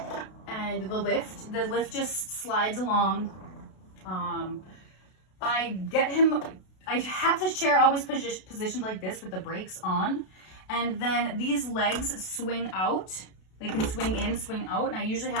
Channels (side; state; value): right; late; 32 ms